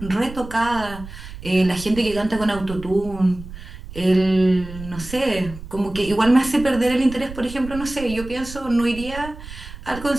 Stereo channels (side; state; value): right; noise; rumble, 13 dB below the sound